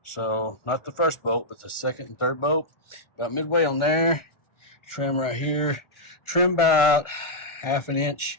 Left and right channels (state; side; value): late; right; 1.4 ms